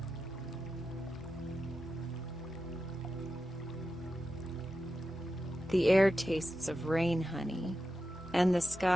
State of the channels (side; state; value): both; normal; correlation 0.90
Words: The air tastes of rain honey, and the